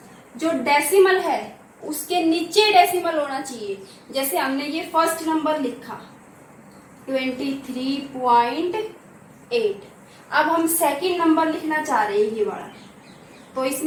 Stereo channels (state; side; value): identical; both; correlation 1.00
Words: जो डेसिमल है उसके नीचे डेसिमल होना चाहिए। जैसे हमने ये फर्स्ट नंबर लिखा 23.8, अब हम सेकंड नंबर लिखना चाह रहे हैं ये वाला, तो